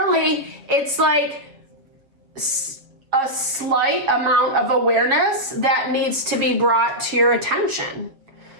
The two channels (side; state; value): left; late; 7.1 ms